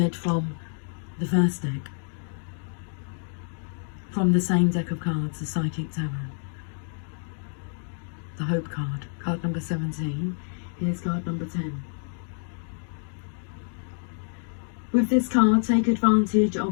from the first deck. From the same deck of cards, the Psychic Tarot. The Hope card, card number 17. Here's card number 10. With this card, take advantage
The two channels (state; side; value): silent; right; 60 dB below the other